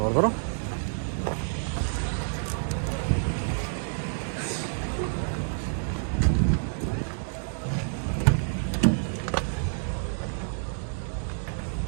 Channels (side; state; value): left; silent; digital silence